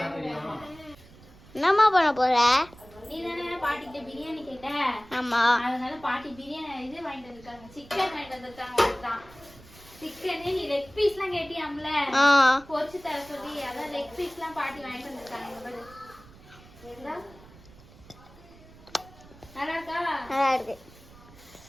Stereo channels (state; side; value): noise; right; rumble, 22 dB below the sound